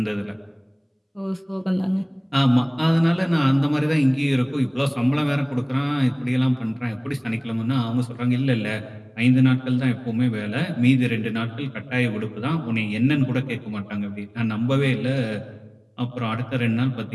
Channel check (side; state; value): both; identical; correlation 1.00